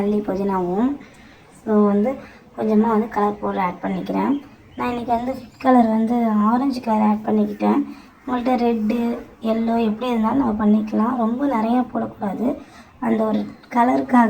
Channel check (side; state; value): both; identical; correlation 1.00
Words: புதினாவும். ஸோ வந்து கொஞ்சமாக வந்து கலர் பவுடர் ஆட் பண்ணிக்கிறேன். நான் இன்றைக்கி வந்து ஃபுட் கலர் வந்து ஆரஞ்சு கலர் ஆட் பண்ணிக்கிட்டேன். உங்கள்கிட்ட ரெட்டு எல்லோ எப்படி இருந்தாலும் நம்ம பண்ணிக்கலாம். ரொம்ப நிறையா போடக்கூடாது, அந்த ஒரு